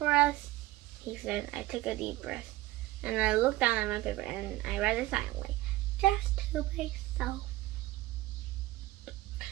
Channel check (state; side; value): quieter; left; 17.6 dB